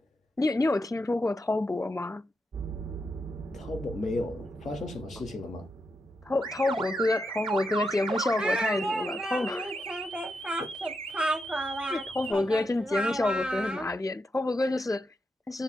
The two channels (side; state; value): both; normal; correlation 0.84